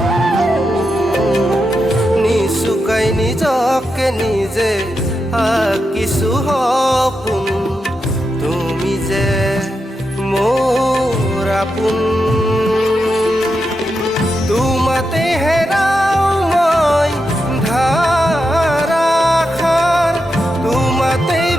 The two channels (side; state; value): both; normal; correlation 0.87